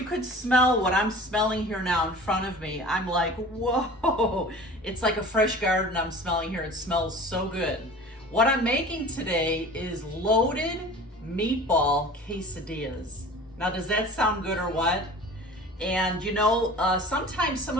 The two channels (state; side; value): normal; both; correlation 0.41